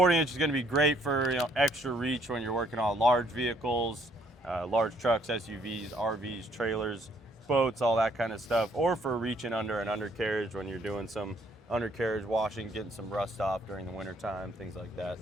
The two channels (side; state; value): both; normal; correlation 0.66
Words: is going to be great for extra reach when you're working on large vehicles, large trucks, SUVs, RVs, trailers, boats, all that kind of stuff, or for reaching under an undercarriage when you're doing some undercarriage washing, getting some rust off during the winter time, things like that.